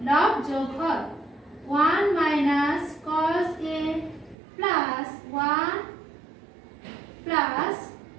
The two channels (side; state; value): left; drops out; at 4.4 s